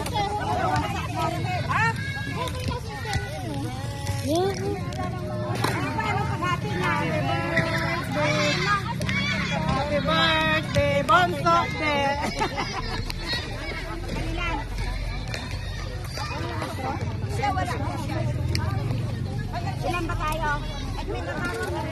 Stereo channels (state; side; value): identical; both; correlation 1.00